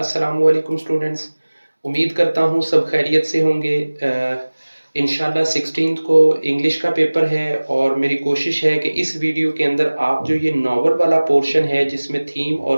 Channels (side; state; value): both; inverted; correlation -1.00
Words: वालेकुम स्टूडेंट्स। उम्मीद करता हूँ सब खैरियत से होंगे। इंशाल्लाह 16 को इंग्लिश का पेपर है और मेरी कोशिश है कि इस वीडियो के अंदर आप जो ये नावल वाला पोर्शन है जिसमें थीम